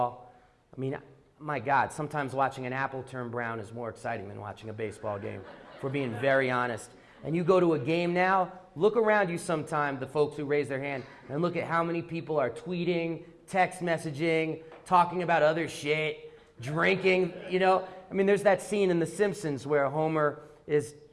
I mean, my God, sometimes watching an apple turn brown is more exciting than watching a baseball game, if we're being very honest. And you go to a game now, look around you sometime, the folks who raise their hand, and look at how many people are tweeting, text messaging, talking about other shit, drinking, I mean, there's that scene in The Simpsons where Homer is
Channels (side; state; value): both; identical; correlation 1.00